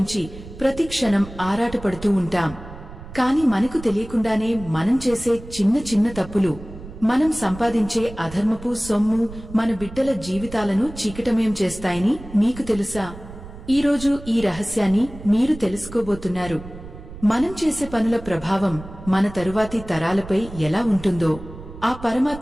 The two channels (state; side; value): noise; right; rumble, 15 dB below the sound